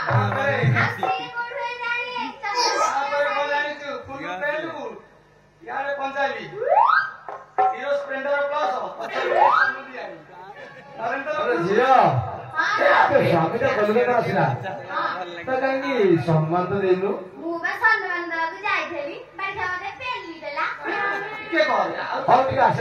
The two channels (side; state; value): both; identical; correlation 1.00